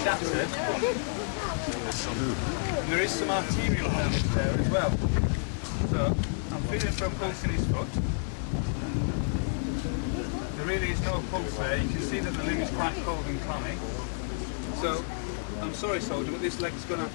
shattered. And there is some arterial damage there as well. So I'm feeling for a pulse in his foot. There really is no pulse there. You can see that the limb is quite cold and clammy. So I'm sorry, soldier, but this leg's going to have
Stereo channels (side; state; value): right; silent; digital silence